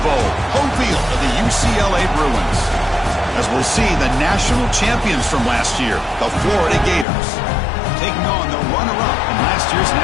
bowl, home field of the UCLA Bruins. As we'll see, the national champions from last year, the Florida Gators, taking on the runner-up in last year's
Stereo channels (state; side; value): drops out; right; at 7.1 s